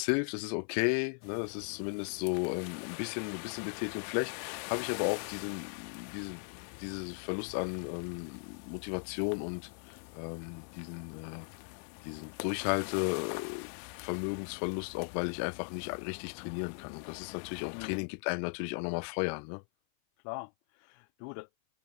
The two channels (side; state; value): right; silent; 53 dB below the other